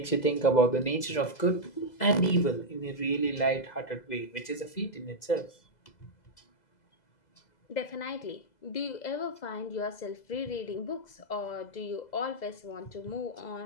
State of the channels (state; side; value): late; right; 2.0 ms